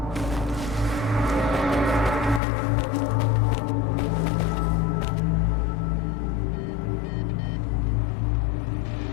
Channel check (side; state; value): right; drops out; at 2.4 s